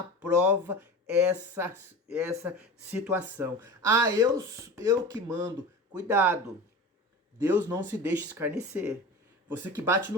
essa situação. Ah, eu que mando. Cuidado. Deus não se deixa escarnecer. Você que bate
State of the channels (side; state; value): both; normal; correlation 0.32